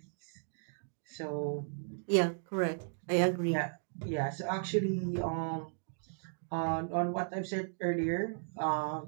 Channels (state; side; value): silent; left; digital silence